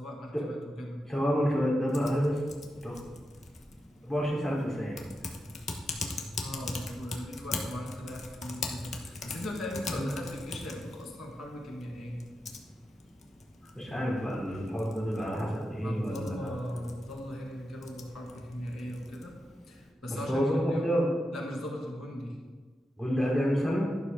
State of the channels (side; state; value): both; normal; correlation 0.88